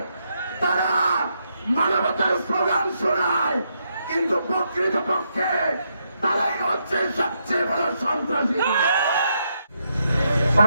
তারা মানবতার স্লোগান শোনায়, কিন্তু প্রকৃতপক্ষে তারাই হচ্ছে সবচেয়ে বড় সন্ত্রাসী।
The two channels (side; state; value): both; inverted; correlation -0.79